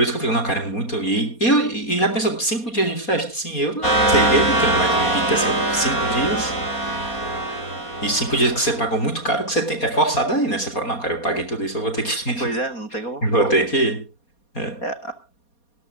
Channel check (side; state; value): right; late; 4.2 ms